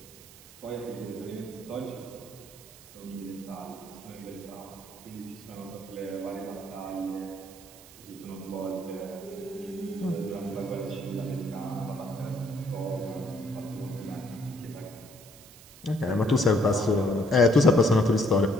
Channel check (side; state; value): right; noise; hiss, 20 dB below the sound